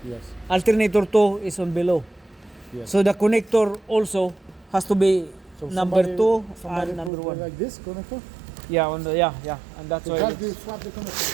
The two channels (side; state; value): left; drops out; at 7.1 s